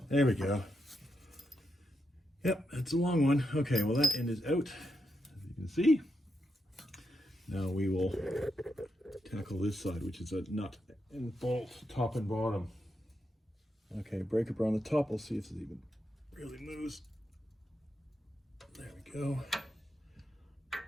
There we go. Yep, that's a long one. Okay, well that end is out, as you can see. Now we will tackle this side, which is a nut and bolt, top and bottom. Okay, breaker bar on the top. We'll see if it even really moves. There we go.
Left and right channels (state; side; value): normal; both; correlation 0.84